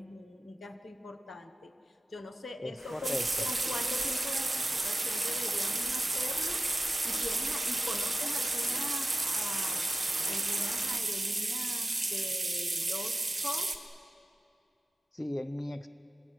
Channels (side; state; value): both; normal; correlation 0.95